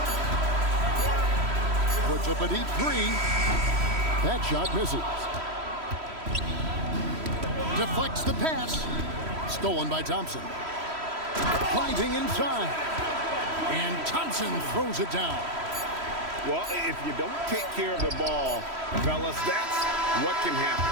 Puts up a deep three. That shot misses. Deflects the pass. Stolen by Thompson. Finding inside. And Thompson throws it down. Well, if you don't take care of the ball, fellas, that's what can happen.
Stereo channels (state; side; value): late; left; 3.1 ms